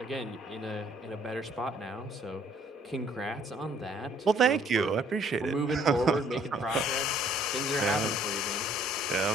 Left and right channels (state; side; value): normal; both; correlation 0.61